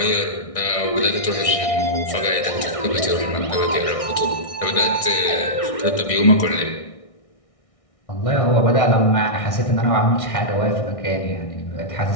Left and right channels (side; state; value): right; late; 1.6 ms